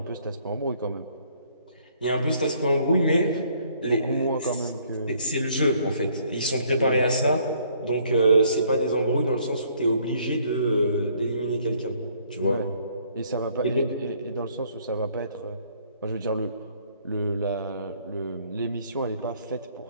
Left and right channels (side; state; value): both; inverted; correlation -0.64